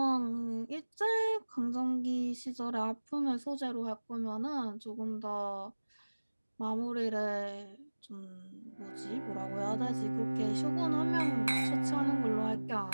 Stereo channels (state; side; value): inverted; both; correlation -1.00